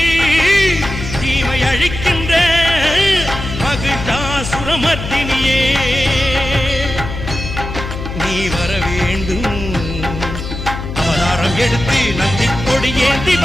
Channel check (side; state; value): left; noise; hum, 7 dB below the sound